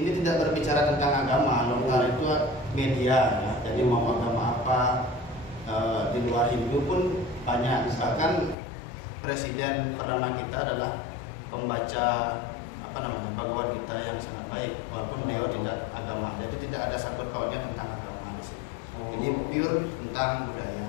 tidak berbicara tentang agama, lontar itu media ya. Jadi mau agama apa di luar Hindu pun banyak. Bahkan presiden pertama kita adalah pembaca Bhagavad Gita yang sangat baik, walaupun beliau tidak agama. Jadi tidak ada sangkut pautnya tentang agama di sini. Ini pure tentang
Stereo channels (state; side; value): drops out; right; at 8.6 s